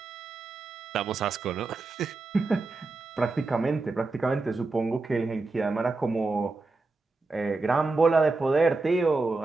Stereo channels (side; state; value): left; quieter; 3.6 dB